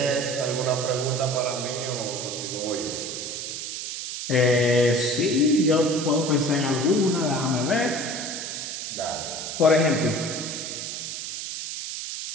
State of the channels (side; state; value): right; noise; hiss, 6 dB below the sound